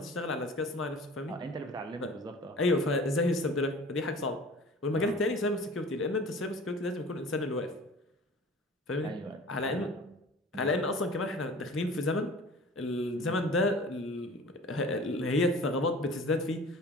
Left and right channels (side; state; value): both; normal; correlation 0.43